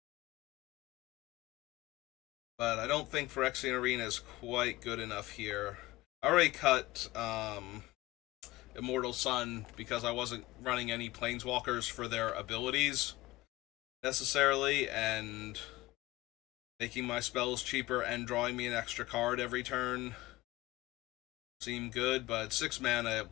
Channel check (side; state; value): right; quieter; 18.6 dB